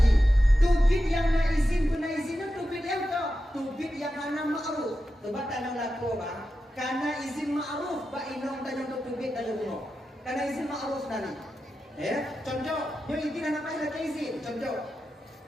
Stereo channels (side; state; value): both; normal; correlation 0.91